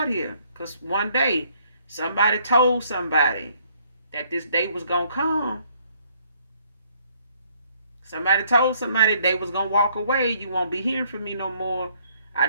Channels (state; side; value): inverted; both; correlation -0.66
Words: here. Because one day, somebody told somebody that this day was going to come. Somebody told somebody they was going to walk away. You won't be hearing from me no more. I